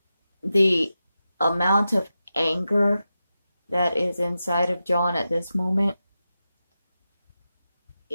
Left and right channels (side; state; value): both; inverted; correlation -0.91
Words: the amount of anger that is inside of John at this moment,